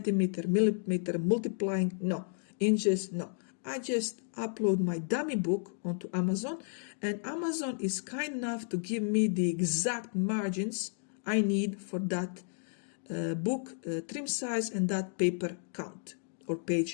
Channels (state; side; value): silent; right; 56 dB below the other